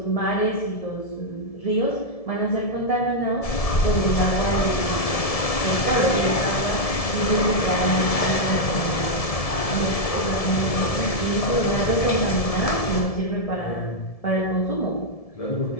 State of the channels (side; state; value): right; late; 1.7 ms